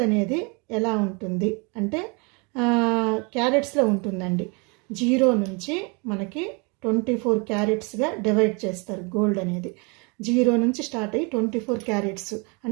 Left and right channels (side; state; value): left; quieter; 31.4 dB